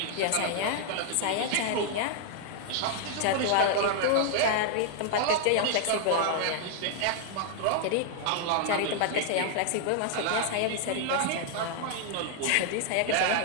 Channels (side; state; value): both; different; correlation 0.00